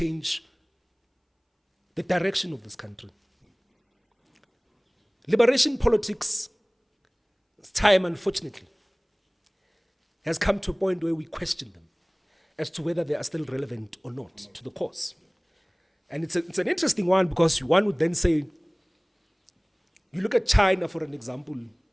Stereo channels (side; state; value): both; identical; correlation 1.00